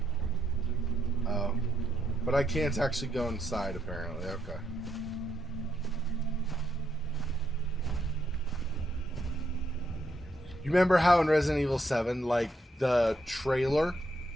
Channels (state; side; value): normal; both; correlation 0.78